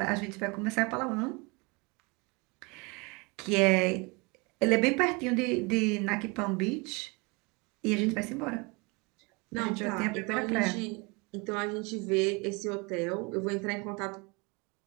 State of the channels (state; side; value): quieter; left; 27.8 dB